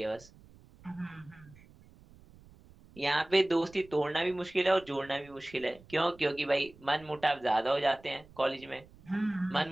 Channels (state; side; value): noise; right; rumble, 24 dB below the sound